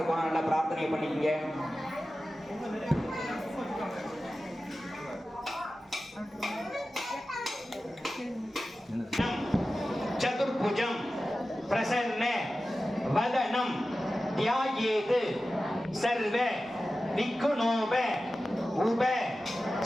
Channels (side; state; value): both; normal; correlation 0.94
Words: நல்லா பிரார்த்தனை பண்ணிக்கங்க. சதுர்புஜம் பிரசன்ன வதனம் தியாயேது சர்வ விக்குணோப உப